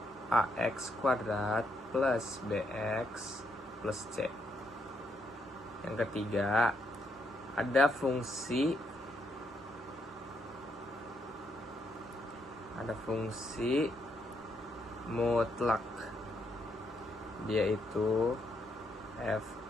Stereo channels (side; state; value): both; normal; correlation 0.76